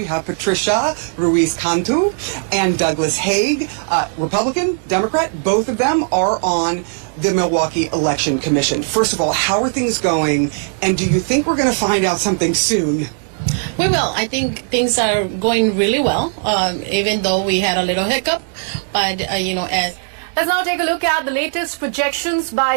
have Patricia Ruiz-Cantu and Douglas Haig, Republican, Democrat. Both of them are on the Milwaukee Election Commission. First of all, how are things going, and do you think we're going to find out something soon? We will. I think things are going really well, even though we had a little hiccup. But, as... Let's now take a look at the latest projections by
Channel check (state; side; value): silent; left; digital silence